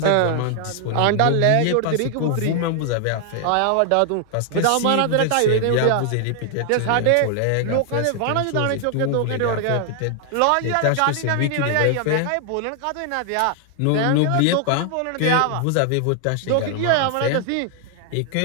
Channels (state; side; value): different; both; correlation 0.00